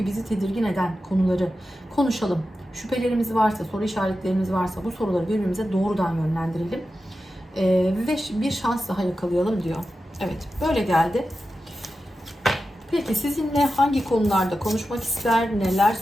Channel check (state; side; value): normal; both; correlation 0.92